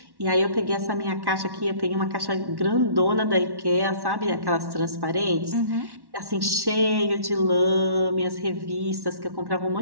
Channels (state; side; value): late; left; 1.1 ms